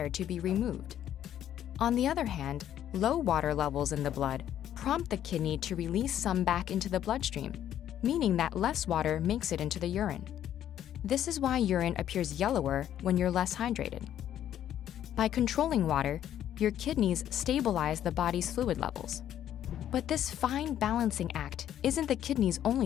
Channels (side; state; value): right; quieter; 10.9 dB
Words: to be removed. On the other hand, low water levels in the blood prompt the kidney to release some back into the bloodstream, meaning that less water makes it into the urine. This is why urine appears yellower when you're less hydrated. By controlling water, your kidneys stabilize the body's fluid levels. But this fine balancing act isn't the kidney's